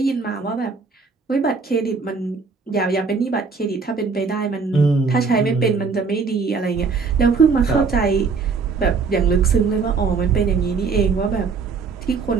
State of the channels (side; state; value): left; quieter; 4.9 dB